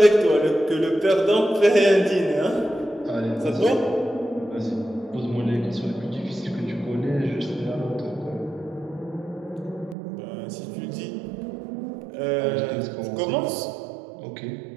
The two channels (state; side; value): drops out; left; at 10.0 s